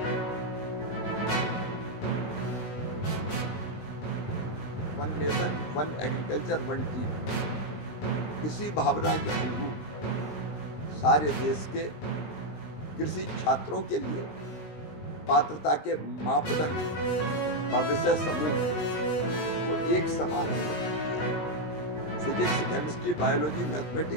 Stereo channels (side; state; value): right; late; 20 ms